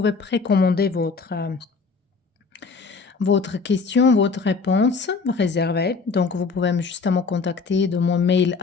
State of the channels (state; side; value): quieter; right; 4.7 dB